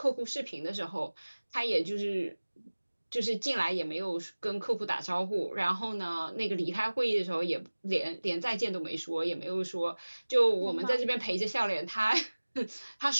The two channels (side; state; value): both; inverted; correlation -1.00